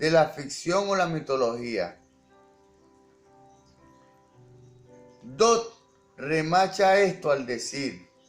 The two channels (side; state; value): both; identical; correlation 1.00